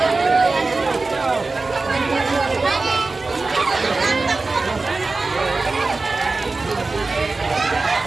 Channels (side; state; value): left; quieter; 3.6 dB